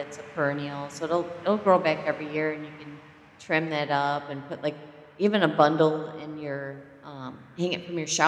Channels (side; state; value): both; identical; correlation 1.00